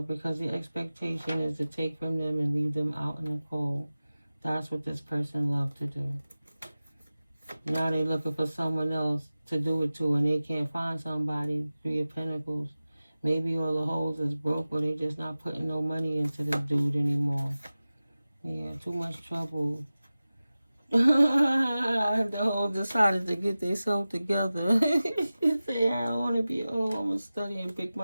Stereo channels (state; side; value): inverted; both; correlation -0.96